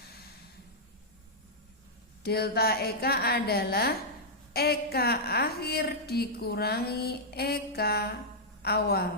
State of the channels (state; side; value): normal; both; correlation -0.07